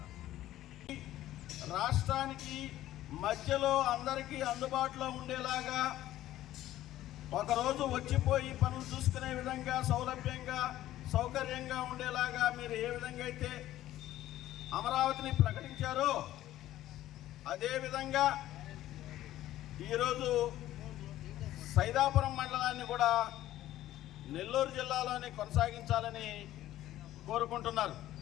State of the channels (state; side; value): quieter; right; 14.1 dB